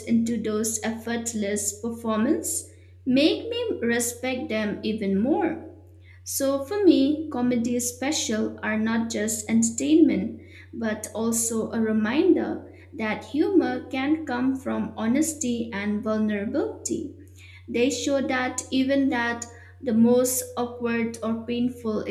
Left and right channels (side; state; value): both; identical; correlation 1.00